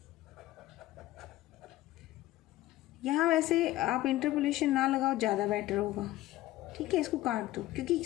यहाँ वैसे आप इंटरपोलेशन ना लगाओ, ज़्यादा बेटर होगा, ठीक है, इसको काट दो, क्योंकि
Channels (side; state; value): right; quieter; 16.1 dB